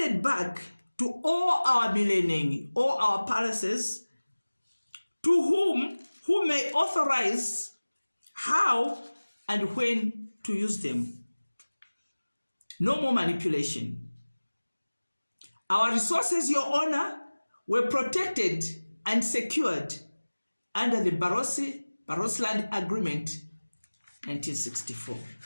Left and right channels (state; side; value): inverted; both; correlation -1.00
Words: back to all our millennium, all our palaces, to who may authorize how and when to use them. No more manipulation. Our resources, Your Honor, were protected and secured under the Barotseland Agreement 1964.